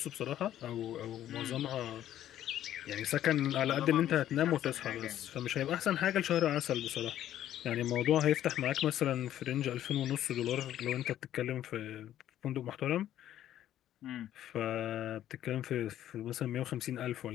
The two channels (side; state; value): right; quieter; 12.0 dB